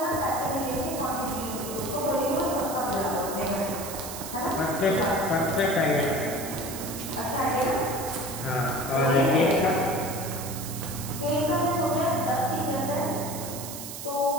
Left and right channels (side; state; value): right; noise; hiss, 9 dB below the sound